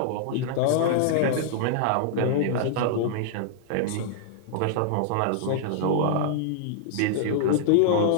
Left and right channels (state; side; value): different; both; correlation -0.01